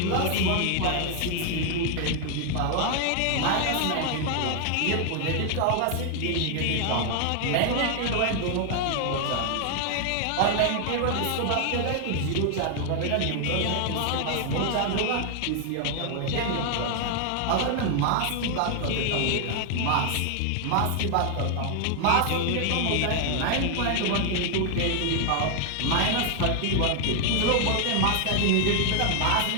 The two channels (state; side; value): different; both; correlation 0.00